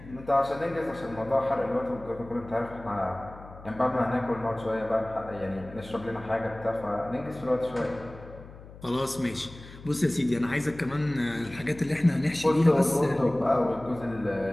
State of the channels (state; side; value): noise; left; hum, 17 dB below the sound